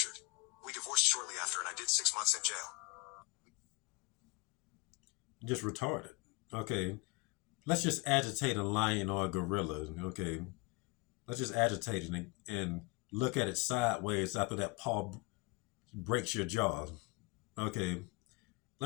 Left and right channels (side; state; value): right; quieter; 26.8 dB